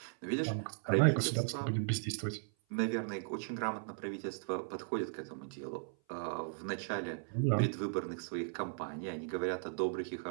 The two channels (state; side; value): silent; left; 53 dB below the other